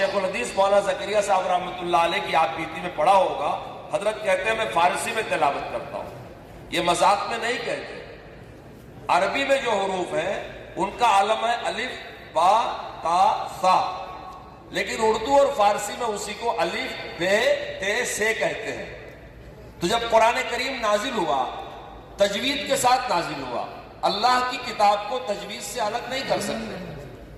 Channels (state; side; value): identical; both; correlation 1.00